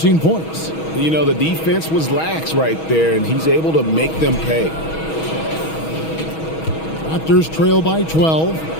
points. You know, the defense was lax right there, and he's able to make them pay. Raptors trail by 12.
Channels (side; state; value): right; late; 6.2 ms